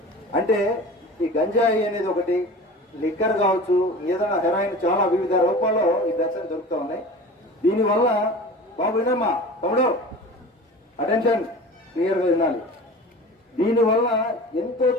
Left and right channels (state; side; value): normal; both; correlation 0.37